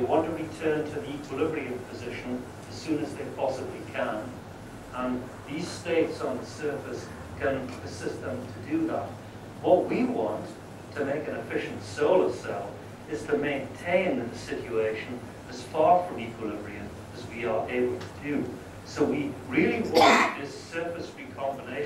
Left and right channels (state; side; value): identical; both; correlation 1.00